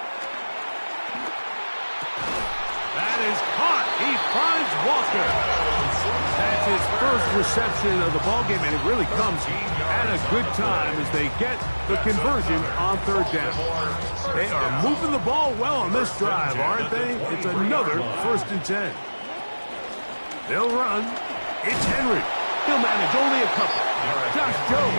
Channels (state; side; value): inverted; both; correlation -1.00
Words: That is caught. He finds Walker. That's his first reception of the ballgame, and it really comes at a good time as they get the conversion on third down. They are moving the ball well on this drive, aren't they? It's another first and 10. They'll run. It's Henry. He'll manage only a couple. Josh